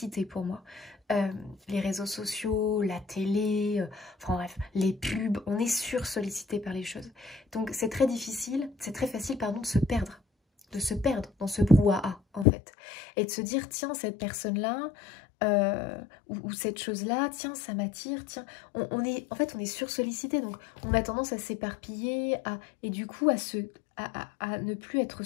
pour moi. Les réseaux sociaux, la télé, enfin bref, les pubs, on est sursollicité par les choses. Donc c'est très difficile, c'est très facile, pardon, de se perdre dans ce brouhaha en fait. Et de se dire, tiens, cette personne-là, ou cette chose-là, tiens, ça m'attire, tiens, on est sursollicité, donc on a tendance à s'éparpiller, et du coup à ne plus être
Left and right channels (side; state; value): right; drops out; at 12.5 s